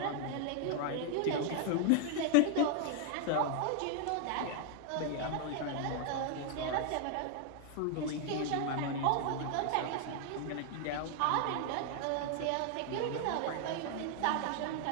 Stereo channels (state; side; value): different; both; correlation 0.00